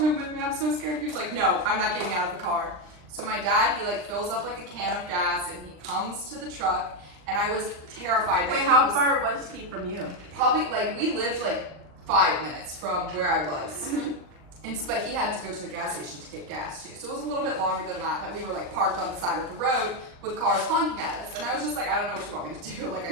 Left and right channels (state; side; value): late; left; 39 ms